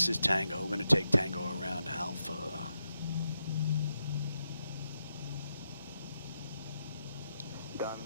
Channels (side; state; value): both; inverted; correlation -0.86